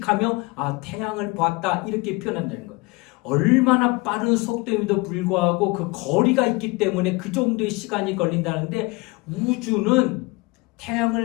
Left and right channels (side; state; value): right; quieter; 24.7 dB